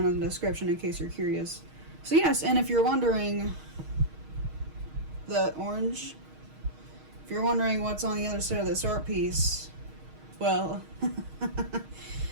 in the description in case you're curious. So yes, and if you're wondering, the orange, if you're wondering what's on the other side of this art piece, well,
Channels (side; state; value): left; late; 6.4 ms